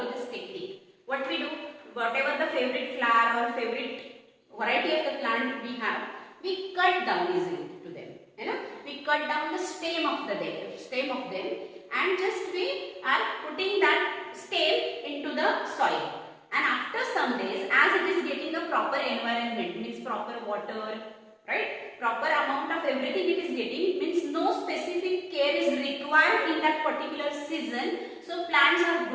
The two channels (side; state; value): both; identical; correlation 1.00